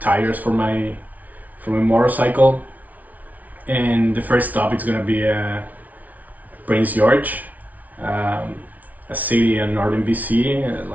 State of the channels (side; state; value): left; late; 0.074 ms